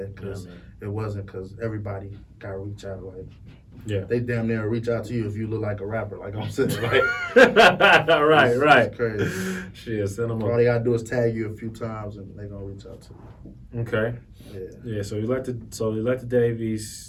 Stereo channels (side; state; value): both; identical; correlation 1.00